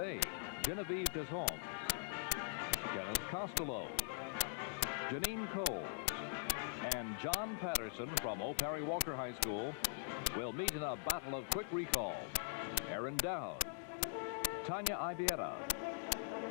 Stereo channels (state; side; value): silent; right; digital silence